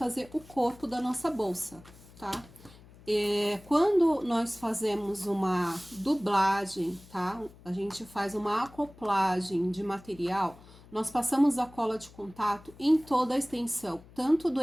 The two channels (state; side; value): noise; left; hum, 22 dB below the sound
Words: o corpo da nossa bolsa, tá? Quando nós fazemos uma dublagem, tá? A gente faz uma acoplagem de material, nós passamos a cola de contato em toda a extensão, tanto do